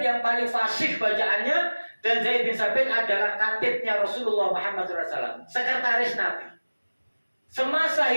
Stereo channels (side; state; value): both; inverted; correlation -1.00